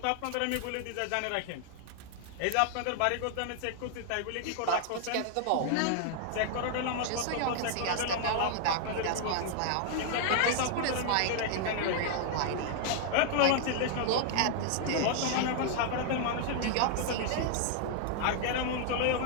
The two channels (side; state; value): both; different; correlation 0.00